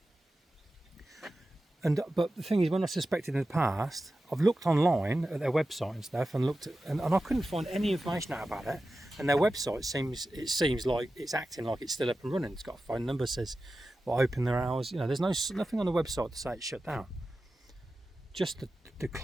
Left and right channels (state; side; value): normal; both; correlation 0.93